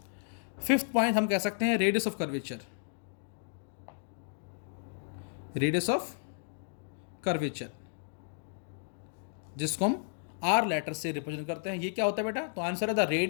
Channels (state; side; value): silent; right; digital silence